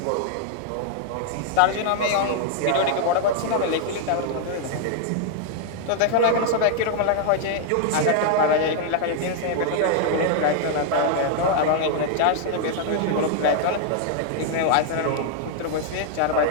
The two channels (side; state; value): both; different; correlation 0.00